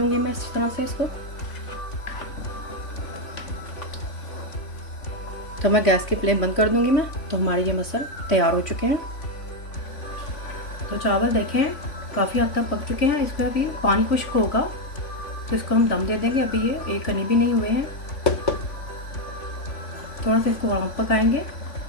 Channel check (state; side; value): late; right; 3.5 ms